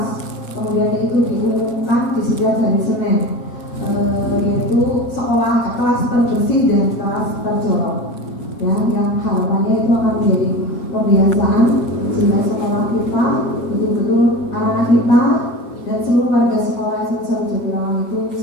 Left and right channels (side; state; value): right; late; 7.4 ms